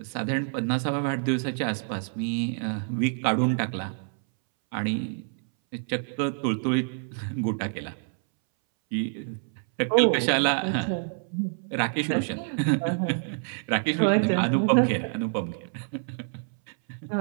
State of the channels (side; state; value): left; silent; 60 dB below the other